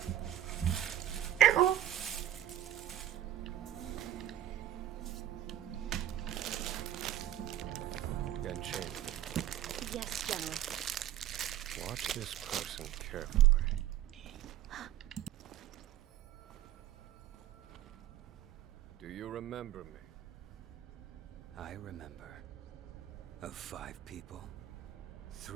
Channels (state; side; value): quieter; left; 12.0 dB